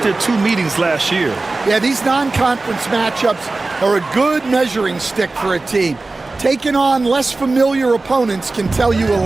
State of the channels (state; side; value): quieter; left; 3.4 dB